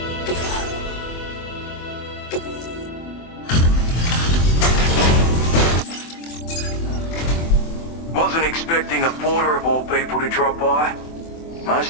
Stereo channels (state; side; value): late; right; 24 ms